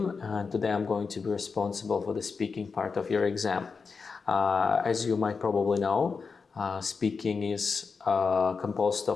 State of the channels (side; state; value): right; quieter; 5.0 dB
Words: and today I'm going to be responsible for the speaking part of your exam. As you might probably know, speaking is composed